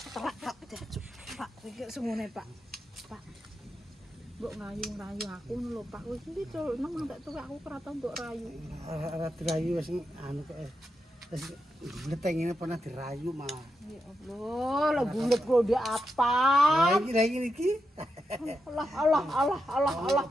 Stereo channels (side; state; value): both; normal; correlation 0.86